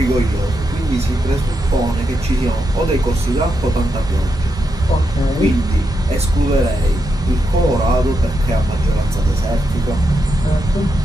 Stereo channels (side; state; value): both; normal; correlation 0.84